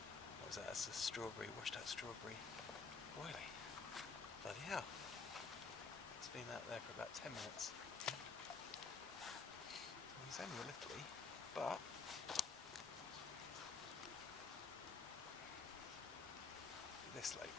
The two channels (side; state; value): right; quieter; 4.8 dB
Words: What was that? That's a strawberry, washed out strawberry boilie. Bloody hell. It's been out there for about 10 minutes. He's only a little, but this lake,